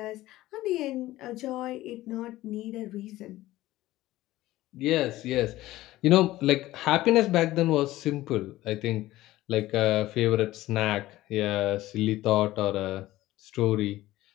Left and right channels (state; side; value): quieter; right; 16.4 dB